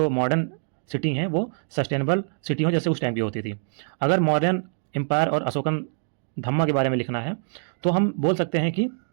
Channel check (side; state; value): left; silent; digital silence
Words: मॉडर्न सिटी हैं वो सस्टेनेबल सिटी हों जैसे उस टाइम की होती थी। अगर मॉडर्न एम्पायर और अशोकन धम्मा के बारे में लिखना है तो हम बोल सकते हैं कि